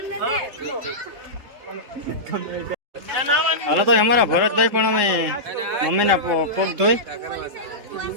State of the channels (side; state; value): left; late; 3.7 ms